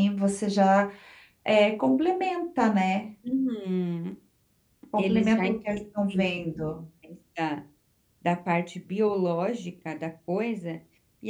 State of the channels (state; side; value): identical; both; correlation 1.00